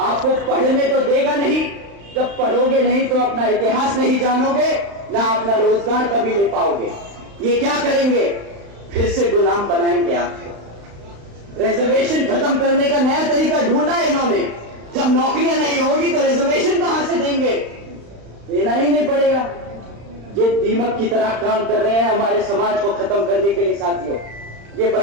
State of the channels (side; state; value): left; late; 35 ms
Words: पढ़ने तो देगा नहीं, जब पढ़ोगे नहीं तो अपना इतिहास नहीं जानोगे, ना अपना रोजगार कभी ले पाओगे। ये क्या करेंगे? फिर से गुलाम बनाएंगे आपको। रिजर्वेशन खत्म करने का नया तरीका ढूंढा है इन्होंने। जब नौकरियां नहीं होगी तो रिजर्वेशन कहां से देंगे? देना ही नहीं पड़ेगा। ये दीमक की तरह काम कर रहे हैं हमारे समाज को खत्म करने के लिए। साथियों, ये